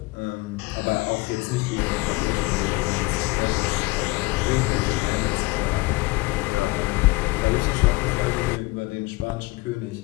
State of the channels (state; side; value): quieter; right; 23.1 dB